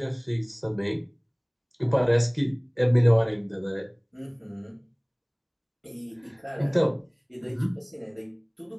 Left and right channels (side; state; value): both; identical; correlation 1.00